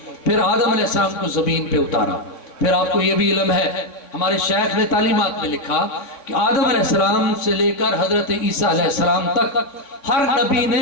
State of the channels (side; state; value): right; late; 3.5 ms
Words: پھر آدم علیہ السلام کو زمین پہ اتارا. پھر آپ کو یہ بھی علم ہے ہمارے شیخ نے تعلیمات میں لکھا کہ آدم علیہ السلام سے لے کر حضرت عیسیٰ علیہ السلام تک ہر نبی نے